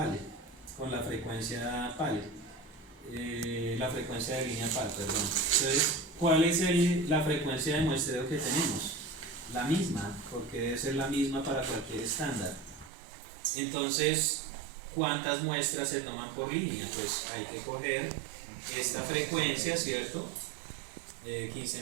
con la frecuencia PAL, la frecuencia de línea PAL, perdón. Entonces, ¿cuál es la frecuencia de muestreo que tenemos? La misma, porque debe ser la misma para cualquier estándar. Entonces, ¿cuántas muestras se toman por línea? Pues hay que coger esta frecuencia, ¿cierto?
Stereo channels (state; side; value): drops out; left; at 12.9 s